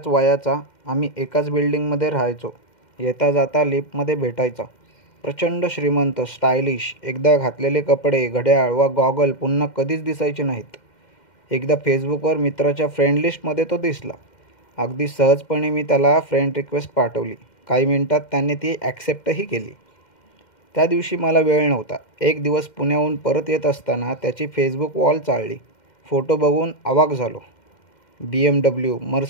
वयाचा. आम्ही एकाच बिल्डिंगमध्ये राहायचो. येता जाता लिफ्टमध्ये भेटायचा. प्रचंड श्रीमंत, स्टायलिश. एकदा घातलेले कपडे, घड्याळ वा गॉगल पुन्हा कधीच दिसायचे नाहीत. एकदा फेसबुकवर मित्राच्या फ्रेंड लिस्टमध्ये तो दिसला. अगदी सहजपणे मी त्याला फ्रेंड रिक्वेस्ट पाठवली. काही मिनिटात त्याने ती ॲक्सेप्टही केली. त्या दिवशी मला वेळ नव्हता. एक दिवस पुण्याहून परत येत असताना त्याची फेसबुक वॉल चाळली. फोटो बघून अवाक झालो. BMW,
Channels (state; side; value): late; right; 2.1 ms